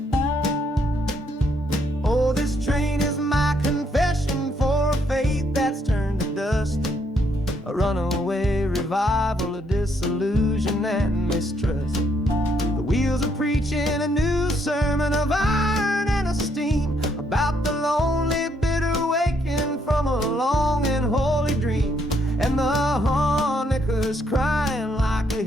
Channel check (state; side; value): normal; both; correlation 0.72